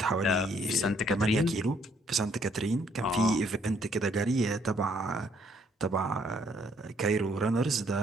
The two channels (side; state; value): both; normal; correlation 0.67